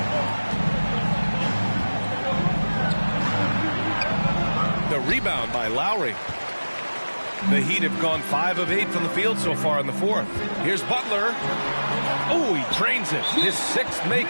The rebound by Lowry. The Heat have gone 5 of 8 from the field so far in the fourth. Here's Butler. Oh, he drains it. His 6th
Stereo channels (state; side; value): inverted; both; correlation -1.00